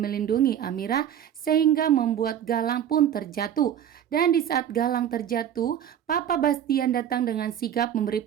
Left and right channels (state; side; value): quieter; left; 9.8 dB